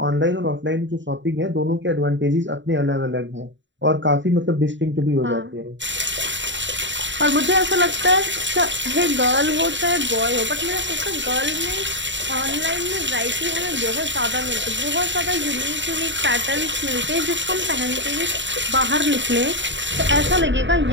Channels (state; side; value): late; left; 0.54 ms